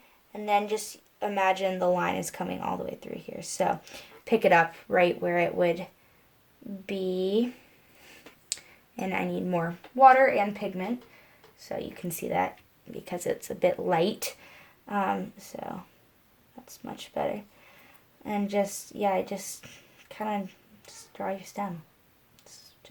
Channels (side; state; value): both; identical; correlation 1.00